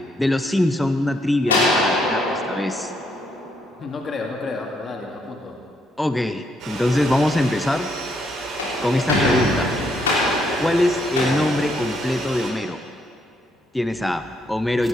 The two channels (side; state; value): both; normal; correlation 0.73